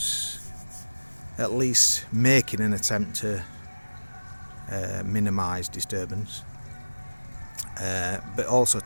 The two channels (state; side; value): inverted; both; correlation -1.00